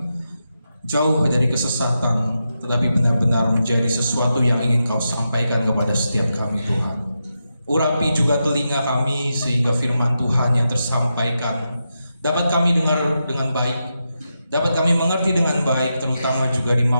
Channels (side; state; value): both; inverted; correlation -0.87